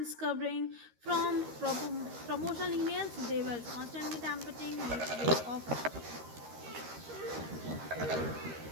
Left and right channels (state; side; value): late; left; 13 ms